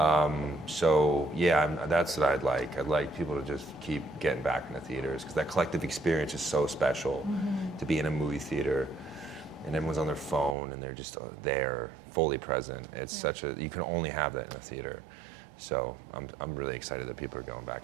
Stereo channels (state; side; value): drops out; left; at 10.6 s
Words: So yeah, that's what I'd like. I'd like people to just keep getting back into theaters because that collective experience is so special to be in a movie theater and everyone's on their phone and they're just there, fully present. It's you can only have that in a theater. So I'm really excited that people are going